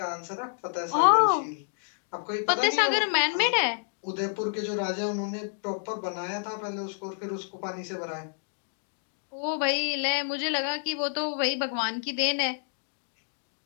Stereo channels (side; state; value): right; silent; digital silence